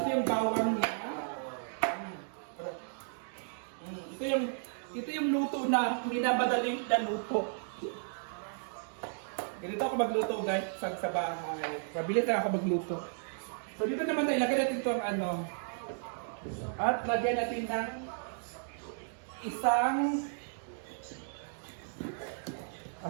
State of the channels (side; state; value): left; silent; digital silence